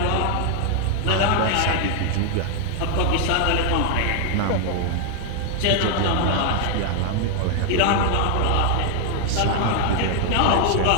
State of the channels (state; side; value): different; both; correlation 0.00